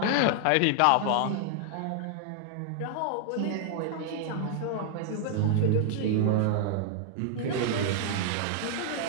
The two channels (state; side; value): different; both; correlation 0.00